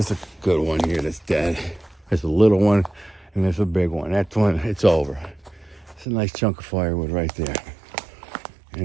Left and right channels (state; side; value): drops out; left; at 6.1 s